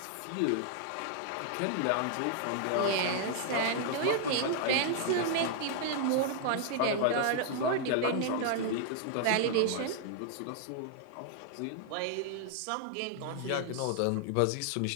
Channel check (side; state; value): both; different; correlation 0.00